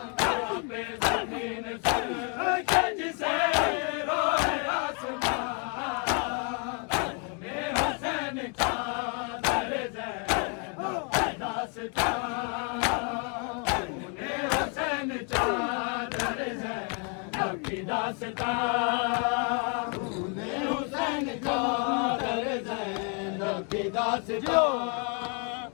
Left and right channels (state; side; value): quieter; right; 38.0 dB